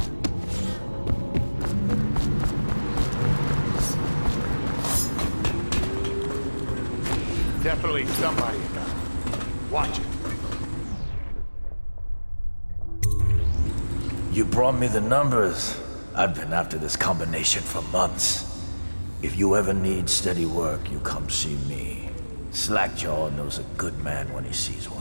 Definitely somebody about it. Watch it. You brought me the numbers. I've been after this combination for months. If you ever need steady work, you come see me. Slackjaw knows a good man when he sees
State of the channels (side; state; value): both; inverted; correlation -1.00